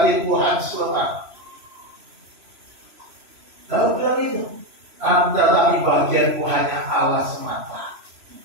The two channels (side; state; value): left; late; 3.0 ms